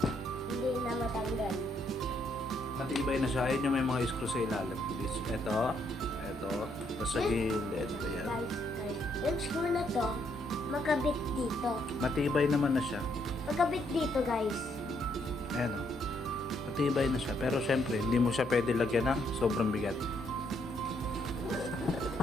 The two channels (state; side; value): normal; both; correlation 0.73